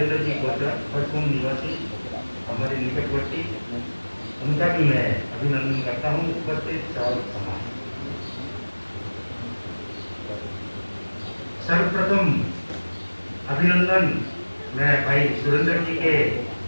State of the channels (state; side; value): inverted; both; correlation -1.00